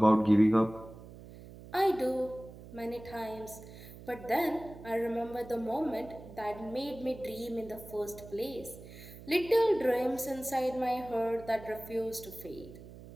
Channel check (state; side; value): noise; right; hum, 16 dB below the sound